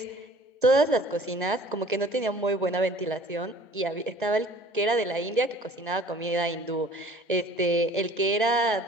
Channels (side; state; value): both; normal; correlation 0.50